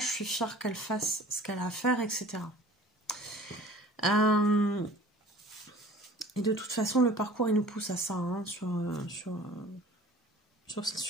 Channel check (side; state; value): both; normal; correlation 0.46